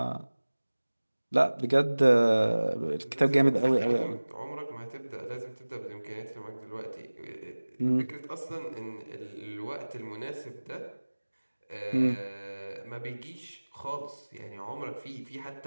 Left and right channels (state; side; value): inverted; both; correlation -1.00